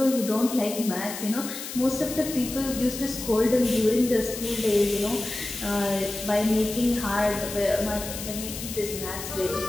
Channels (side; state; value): left; noise; hiss, 9 dB below the sound